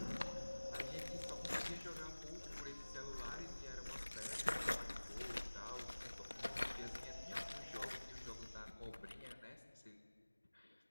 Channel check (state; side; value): inverted; both; correlation -1.00